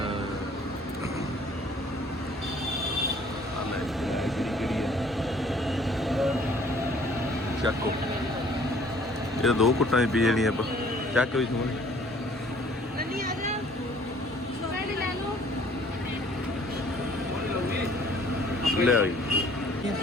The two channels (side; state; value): both; normal; correlation 0.57